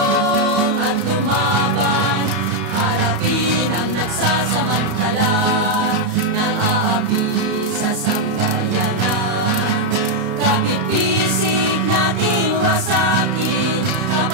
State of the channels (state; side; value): late; left; 33 ms